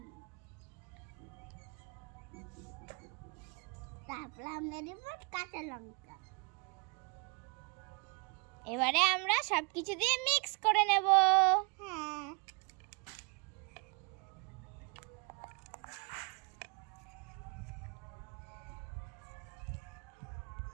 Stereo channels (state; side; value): quieter; left; 32.5 dB